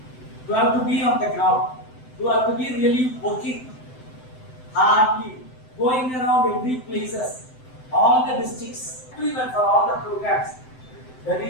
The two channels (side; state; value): right; late; 7.8 ms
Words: You have to be on the ground. You have to be really working hardly, going around every places, all the districts, even for all the programs. The